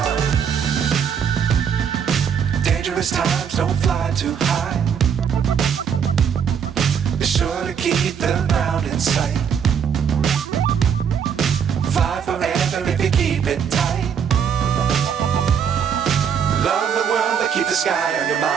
Times don't fly too high. Be sure to keep the ground in sight. Fly forever if you keep it tight. Love the world but keep the sky on your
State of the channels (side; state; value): left; quieter; 7.5 dB